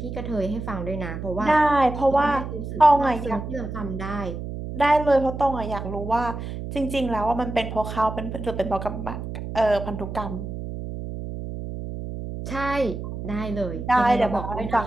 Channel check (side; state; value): right; noise; hum, 7 dB below the sound